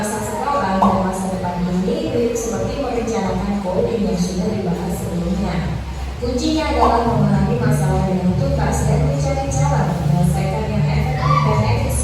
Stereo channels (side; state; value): both; identical; correlation 1.00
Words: sekarang dan masa depan ini mirip seperti merencanakan coding yang sudah dibahas sebelumnya. Kuncinya adalah memahami masalah dengan tuntas dan mencari cara menyelesaikan yang efektif dan